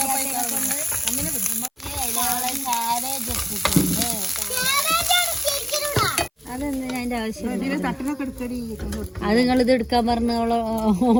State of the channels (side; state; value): both; identical; correlation 1.00